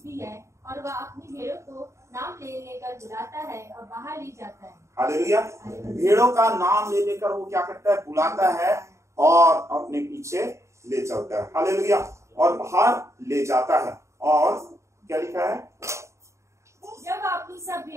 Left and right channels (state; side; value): late; left; 0.14 ms